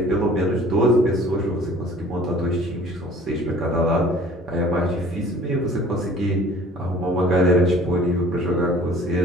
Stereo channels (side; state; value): both; normal; correlation 0.50